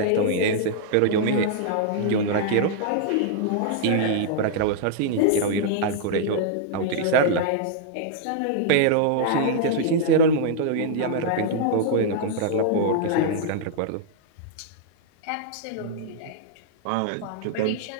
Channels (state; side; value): different; both; correlation -0.01